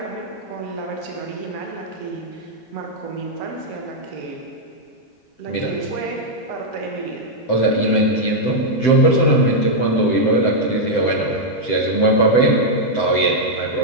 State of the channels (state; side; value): late; right; 7.8 ms